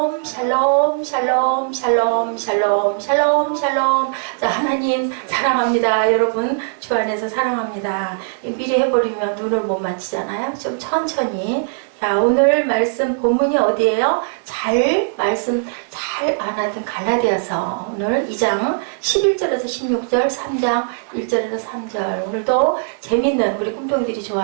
샬롬 샬롬 샬롬 샬롬 샬롬 샬롬. 자, 하나님 사랑합니다. 여러분 주 안에서 사랑합니다. 미리 해버리면 눈을 못 맞추잖아요. 좀 천천히. 자, 오늘 말씀 본문이 어디예요? 말씀 잘 안 하던 갈라디아서 오늘 2장 11절에서 16절 3장 1절에서 3절. 오늘도 재밌는 우리 꿈동이들이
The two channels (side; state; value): left; silent; digital silence